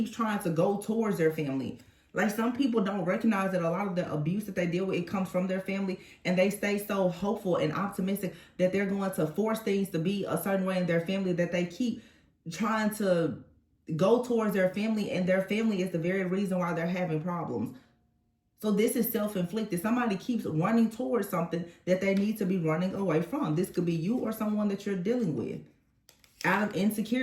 trying to go towards their family. Like some people don't recognize that a lot of the abuse that they deal with, it comes from their family, and they stay so hopeful and optimistic that they're going to force things to be a certain way in their family, that they keep trying to go towards their family, and their family is the very reason why they're having problems. So this is self-inflicted. Somebody keeps running towards something that they need to be running away from. This could be you or someone that you're dealing with. Out of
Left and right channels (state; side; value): identical; both; correlation 1.00